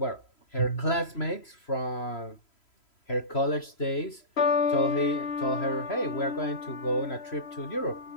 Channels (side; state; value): right; late; 3.0 ms